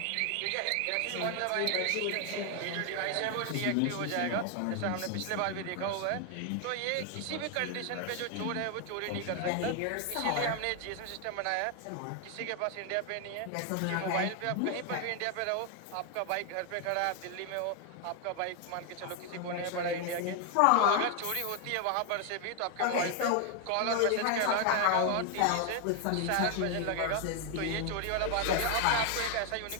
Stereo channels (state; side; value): different; both; correlation 0.01